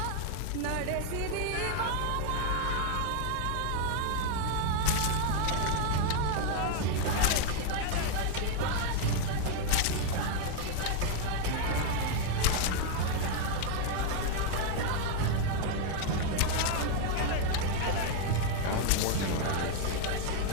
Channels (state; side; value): different; both; correlation 0.00